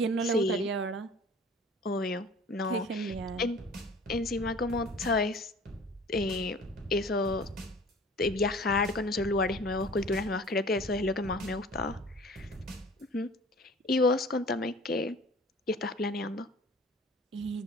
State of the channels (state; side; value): normal; both; correlation 0.46